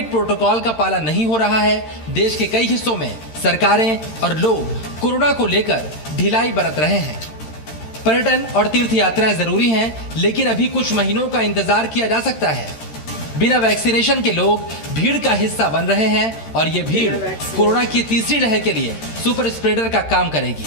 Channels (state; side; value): late; right; 13 ms